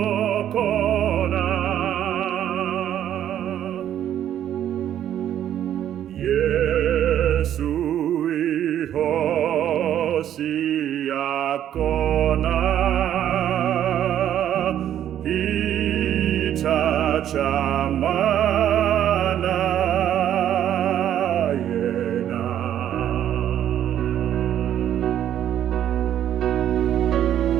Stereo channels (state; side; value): quieter; left; 10.8 dB